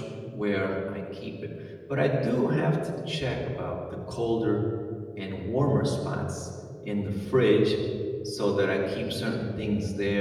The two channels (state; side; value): identical; both; correlation 1.00